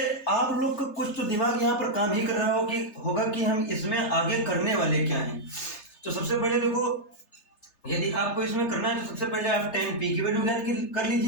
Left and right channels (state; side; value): late; right; 3.3 ms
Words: आप लोग का कुछ तो दिमाग यहाँ पर काम ही कर रहा होगा कि हम इसमें आगे करने वाले क्या हैं। तो सबसे पहले देखो, यदि आपको इसमें करना है तो सबसे पहले आप tan p की वैल्यू ज्ञात कर